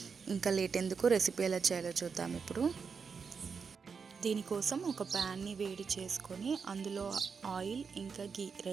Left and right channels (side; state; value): left; quieter; 5.7 dB